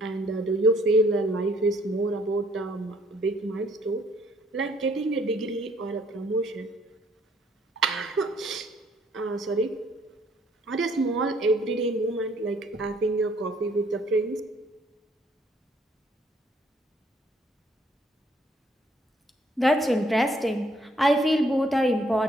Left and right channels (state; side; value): normal; both; correlation 0.64